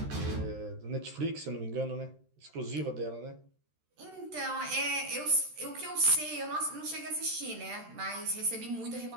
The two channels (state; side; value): late; left; 13 ms